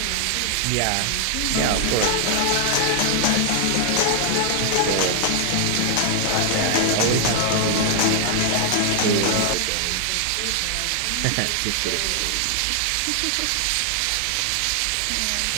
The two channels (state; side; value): different; both; correlation 0.00